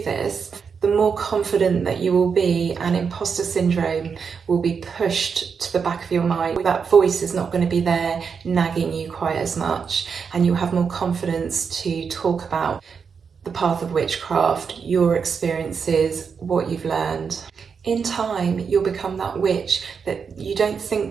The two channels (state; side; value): quieter; left; 6.1 dB